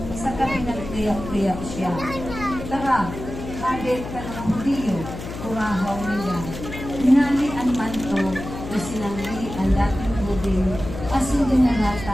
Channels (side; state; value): left; noise; hum, 10 dB below the sound